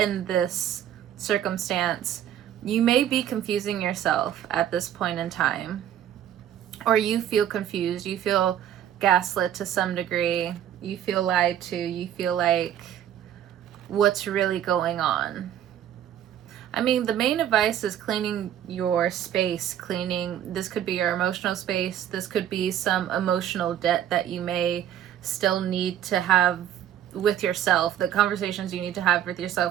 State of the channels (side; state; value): left; quieter; 10.6 dB